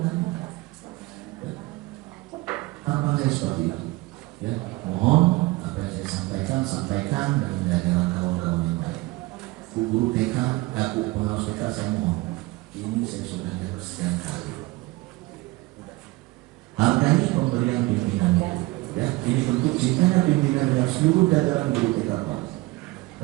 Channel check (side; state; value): left; quieter; 21.4 dB